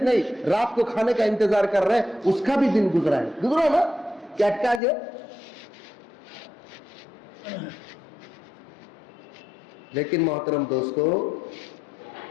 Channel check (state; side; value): drops out; right; at 4.8 s